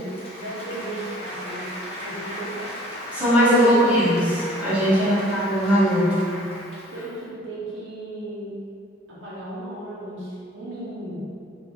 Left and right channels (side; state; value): both; normal; correlation 0.52